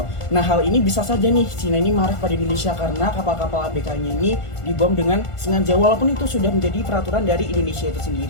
Nah hal ini bisa saja nih Cina ini marah pada Indonesia karena kapal-kapal ABK-nya ini dibom dengan sengaja, walaupun itu sudah menjadi peraturan dari Indonesia itu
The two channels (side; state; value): right; late; 1.5 ms